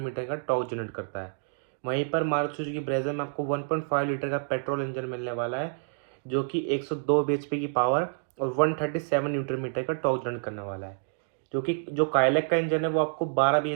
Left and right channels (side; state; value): left; silent; digital silence